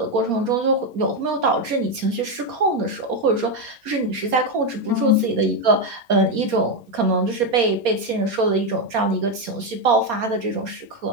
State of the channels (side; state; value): left; late; 4.3 ms